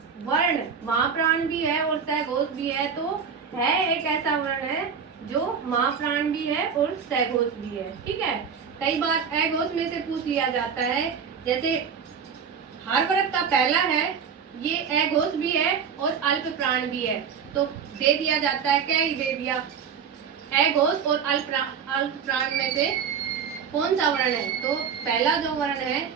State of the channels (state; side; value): quieter; left; 6.8 dB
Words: वर्ण महाप्राण भी है और सघोष भी है। तो है एक ऐसा वर्ण है जो महाप्राण भी है और सघोष भी है। ठीक है, कई बार अघोष में से पूछ लिया जाता है, जैसे हर वर्ग का पहला है ये अघोष भी है और अल्प प्राण भी है, तो दे दिया जाता है, क्या ही दे दिया, अघोष और अल्प प्राण में से कौन सा वर्ण है? तो पहला जो वर्ण है